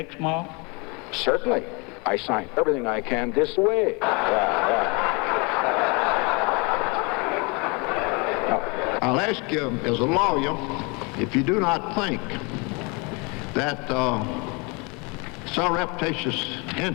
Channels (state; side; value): quieter; right; 30.2 dB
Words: Certainly. I signed everything I can this way. I'll ask you, as a lawyer, if you do not think that surreptitious